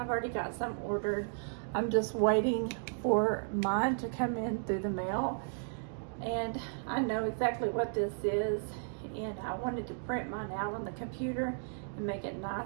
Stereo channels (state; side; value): silent; left; digital silence